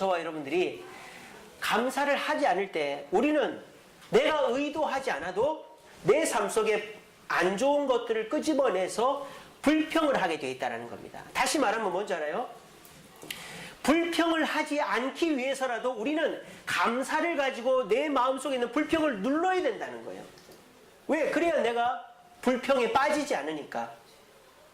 여러분들이 감사를 하지 않을 때 우리는 내가 의도하지 않아도 내 삶 속에 안 좋은 것들을 끄집어내서 불평을 하게 되어 있다는 겁니다. 다시 말하면 뭔지 알아요? 불평을 하지 않기 위해서라도 우리는 감사를 가지고 내 마음속에 있는 불평을 눌러야 된다는 거예요. 왜? 그래야 내가 불평에 빠지지 않으니까.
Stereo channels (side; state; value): both; identical; correlation 1.00